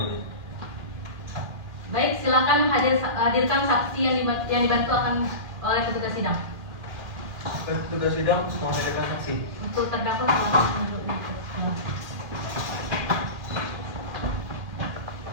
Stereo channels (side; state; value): left; late; 2.4 ms